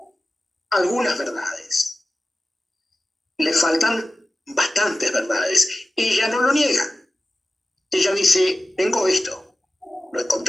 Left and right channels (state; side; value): normal; both; correlation 0.95